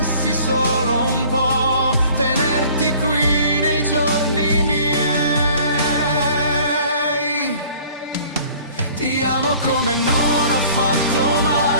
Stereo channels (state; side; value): inverted; both; correlation -0.51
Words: solo un po' tenerti qui nei giorni miei. Ti amo come non ho fatto